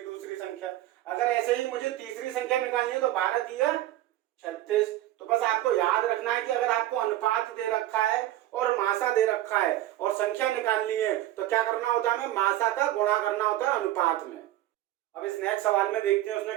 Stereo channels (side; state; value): left; quieter; 14.5 dB